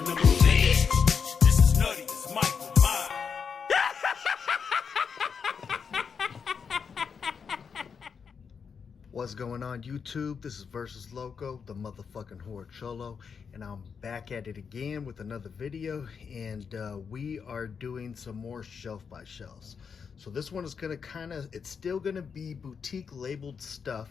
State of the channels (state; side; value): quieter; right; 6.2 dB